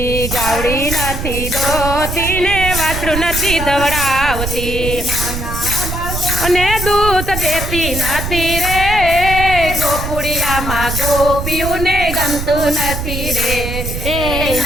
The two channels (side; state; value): right; noise; rumble, 5 dB below the sound